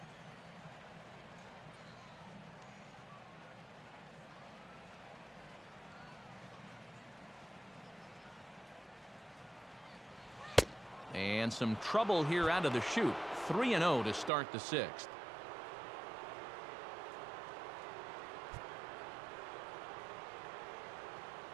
And some trouble here out of the chute. 3-0 to start the 6th.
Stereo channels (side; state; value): left; drops out; at 14.3 s